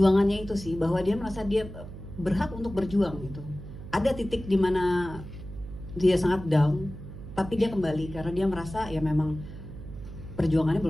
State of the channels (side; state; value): right; noise; hum, 12 dB below the sound